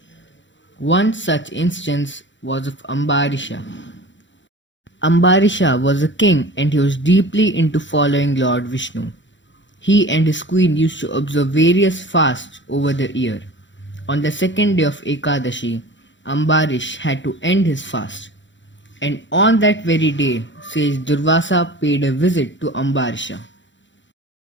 One such instance was of Ambarisha. Ambarisha was a king and he was deeply into following Lord Vishnu. He and his queen used to observe various fasts over the year. On the second day of Ekadashi, Ambarish had to end his fast. And on that very day, sage Durvasa paid a visit to Ambarisha.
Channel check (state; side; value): late; right; 0.54 ms